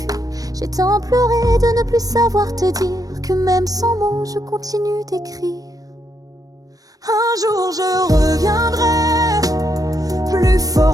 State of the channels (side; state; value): left; late; 0.18 ms